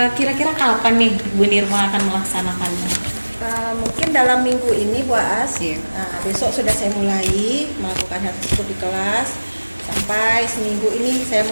kira-kira kapan nih Bu Nirma akan melaksanakannya? Mungkin dalam minggu ini Bu Aas. Besok sudah saya mulai melakukan hal tersebut di kelas. Sampai seminggu ini saya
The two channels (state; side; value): inverted; both; correlation -1.00